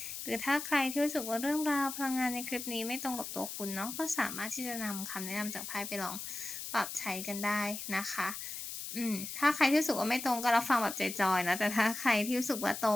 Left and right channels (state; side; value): noise; left; hiss, 7 dB below the sound